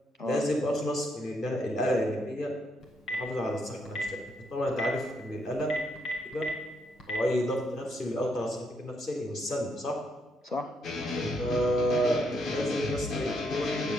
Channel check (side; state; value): both; normal; correlation 0.76